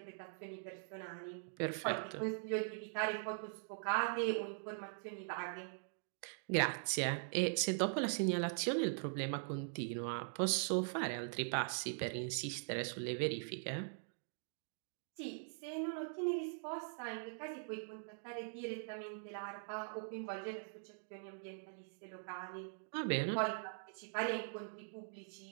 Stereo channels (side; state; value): left; silent; digital silence